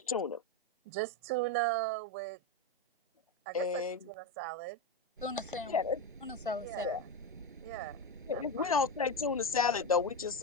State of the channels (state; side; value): normal; both; correlation 0.13